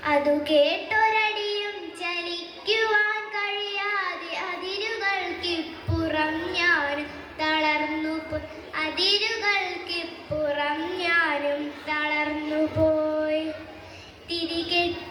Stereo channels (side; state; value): both; identical; correlation 1.00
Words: അതു കേട്ടൊരടിയും ചലിക്കുവാൻ കഴിയാതെ അതിരുകൾക്കിപ്പുറം ഞാനും തളർന്നുപോയി. അതിരുകൾക്കിപ്പുറം ഞാനും തളർന്നുപോയി.